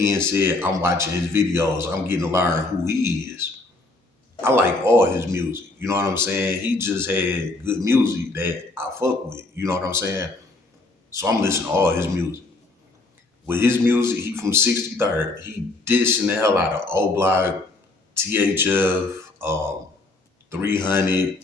said, I'm watching his videos. I'm getting to learn who he is. I like all his music. You know what I'm saying? He just had good music that I fuck with. You know what I'm saying? So I'm listening to all his music. With his music, he from 63rd. He dissing the hell out of O-Block, THF, 300,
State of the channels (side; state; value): right; quieter; 3.1 dB